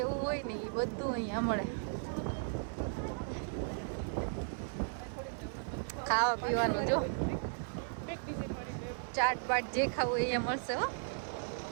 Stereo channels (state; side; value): silent; left; digital silence